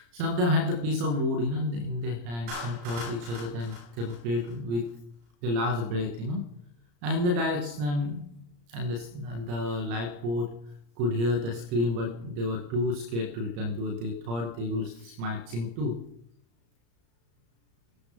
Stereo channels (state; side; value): late; left; 34 ms